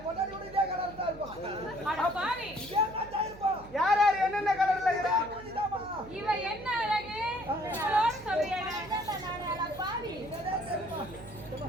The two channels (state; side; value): noise; right; hum, 18 dB below the sound